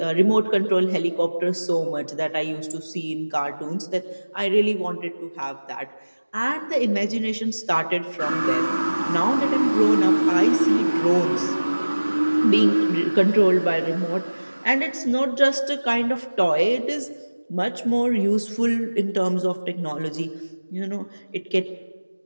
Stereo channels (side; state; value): both; inverted; correlation -1.00